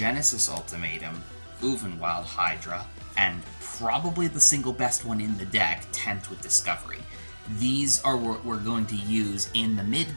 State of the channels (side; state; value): both; inverted; correlation -1.00